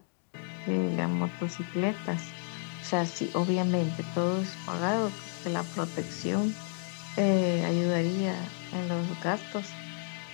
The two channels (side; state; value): right; silent; 57 dB below the other